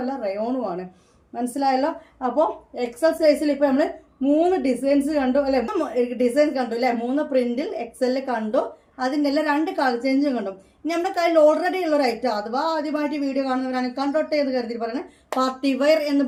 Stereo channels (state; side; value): identical; both; correlation 1.00